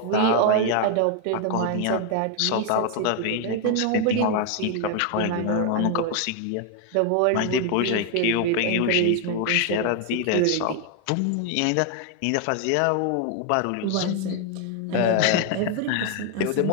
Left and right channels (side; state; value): both; different; correlation 0.00